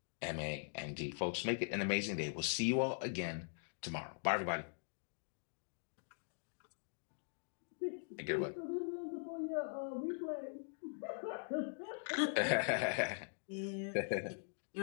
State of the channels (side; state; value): right; silent; digital silence